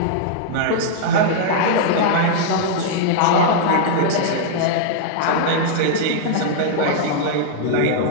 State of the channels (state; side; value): different; both; correlation -0.01